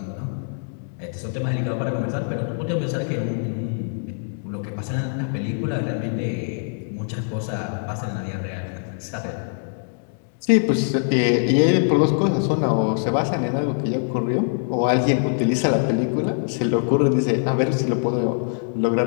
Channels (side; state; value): right; silent; digital silence